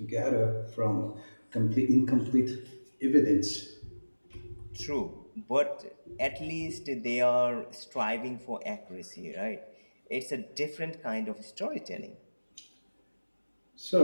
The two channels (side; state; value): both; inverted; correlation -1.00